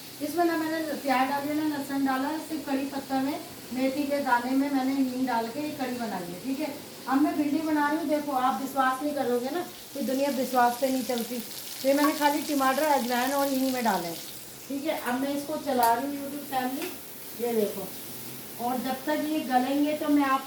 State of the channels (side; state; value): both; identical; correlation 1.00